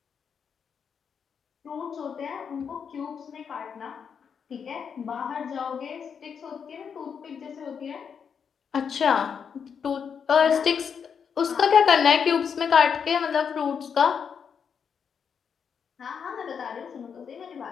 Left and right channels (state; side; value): quieter; right; 6.9 dB